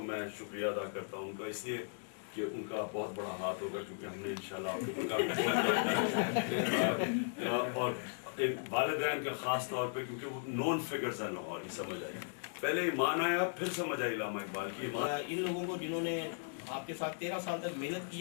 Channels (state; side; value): silent; right; digital silence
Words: मैं शुक्रिया अदा करता हूँ उनका, इसलिए कि उनका बहुत बड़ा हाथ होगा, क्योंकि हमने इंशाल्लाह उनका और एक वालिदैन का ख़ास तौर पे, क्योंकि वो नॉन फिगर्स हैं लाहौर, ही समझ आई, पहले ईमान आया फिर समझ आई इलामा इकबाल की ईमान। इन लोगों को जिन्होंने आपके साथ 13 साल तक मेहनत की